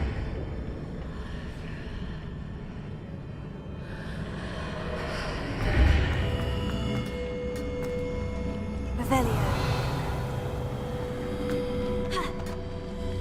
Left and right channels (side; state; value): both; identical; correlation 1.00